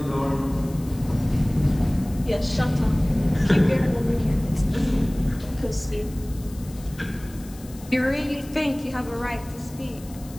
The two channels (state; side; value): noise; left; hiss, 21 dB below the sound